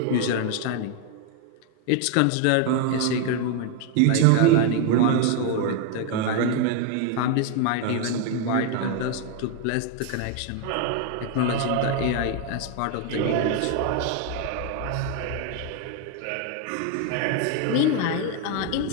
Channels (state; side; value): different; both; correlation 0.01